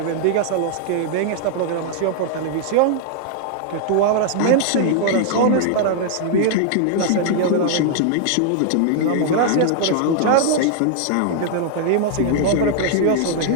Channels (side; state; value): both; different; correlation -0.01